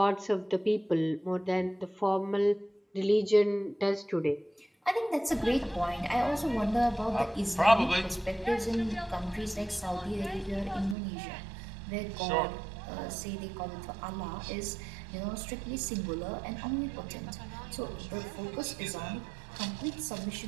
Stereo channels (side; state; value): left; drops out; at 11.0 s